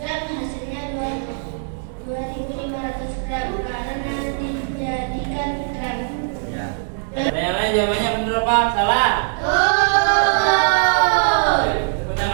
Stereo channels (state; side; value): silent; left; digital silence